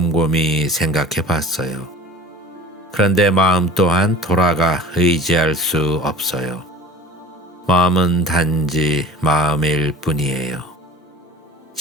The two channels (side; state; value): both; normal; correlation 0.41